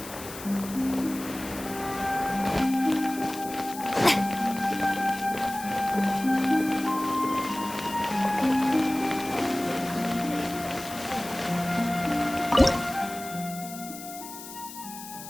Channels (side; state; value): left; noise; hiss, 13 dB below the sound